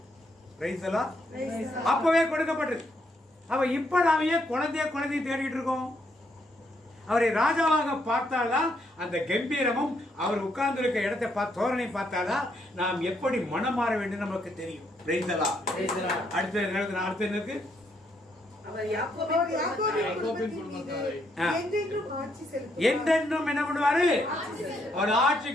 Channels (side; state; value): both; normal; correlation 0.75